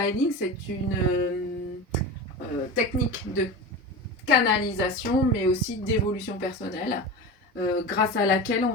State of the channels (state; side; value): normal; both; correlation 0.27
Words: Healing, c'est une technique de canalisation, mais aussi d'évolution personnelle, grâce à laquelle on